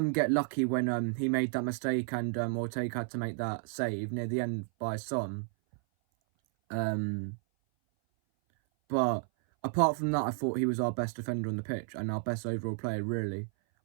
get lucky when he made that mistake and Ortega had to make that save near the end by Son. But apart from that, I thought he was our best defender on the pitch and our best overall player, really,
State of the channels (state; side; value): silent; left; 56 dB below the other